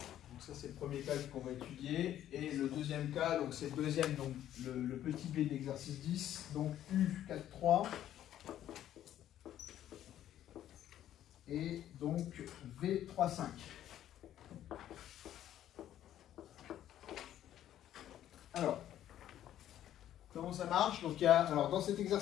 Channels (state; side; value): quieter; right; 11.7 dB